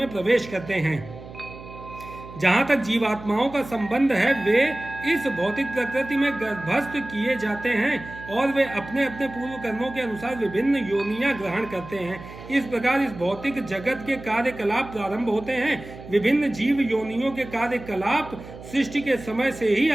प्रवेश करते हैं। जहाँ तक जीवात्माओं का संबंध है, वे इस भौतिक प्रकृति में गर्भस्थ किए जाते हैं और वे अपने अपने पूर्व कर्मों के अनुसार विभिन्न योनियां ग्रहण करते हैं। इस प्रकार इस भौतिक जगत के कार्यकलाप प्रारंभ होते हैं। विभिन्न जीव योनियों के कार्यकलाप सृष्टि के समय से ही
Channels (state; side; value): noise; right; hum, 15 dB below the sound